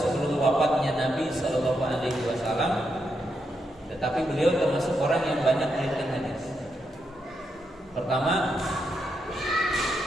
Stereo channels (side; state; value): both; normal; correlation 0.82